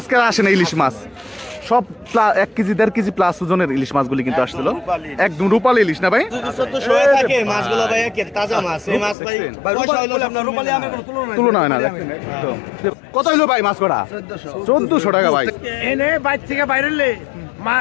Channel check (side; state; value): right; drops out; at 9.2 s